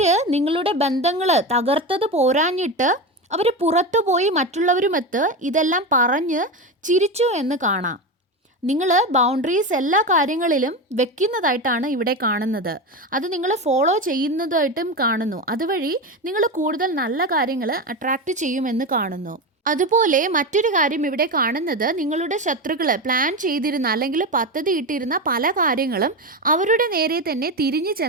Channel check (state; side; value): normal; both; correlation 0.19